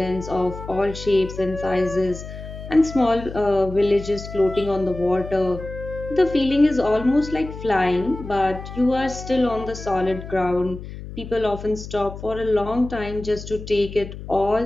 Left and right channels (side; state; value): left; noise; hum, 11 dB below the sound